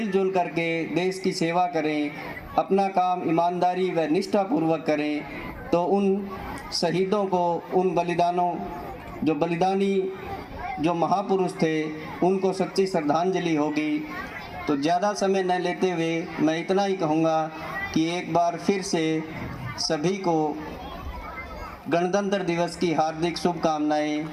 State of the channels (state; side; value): identical; both; correlation 1.00